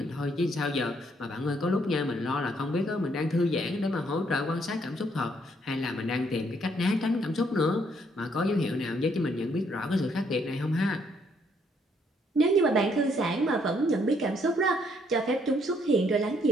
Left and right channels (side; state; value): both; normal; correlation 0.69